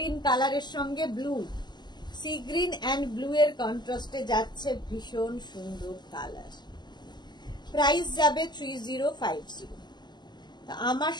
কালারের সঙ্গে blue, C green and blue এর কন্ট্রাস্টে যাচ্ছে, ভীষণ সুন্দর কালার। প্রাইস যাবে 3050। আমার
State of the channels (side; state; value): right; late; 0.21 ms